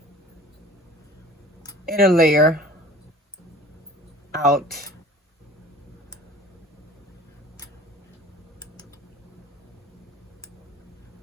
inner layer out.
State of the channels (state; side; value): normal; both; correlation 0.44